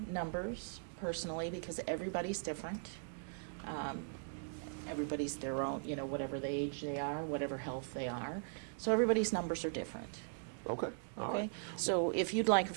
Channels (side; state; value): left; silent; digital silence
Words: numbers personally because everybody's different. Everybody's their own, you know, whatever the age they are, whatever health they are. So everybody's numbers are different. Okay, all right. So if you'd like a